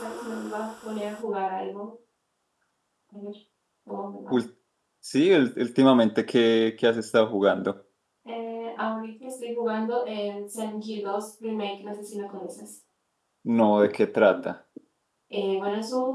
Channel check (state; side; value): identical; both; correlation 1.00